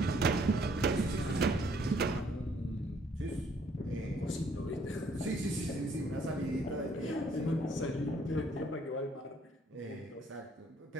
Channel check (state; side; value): normal; both; correlation 0.64